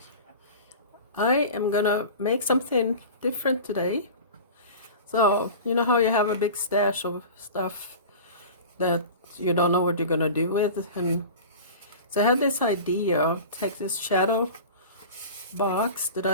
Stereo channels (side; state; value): both; inverted; correlation -0.35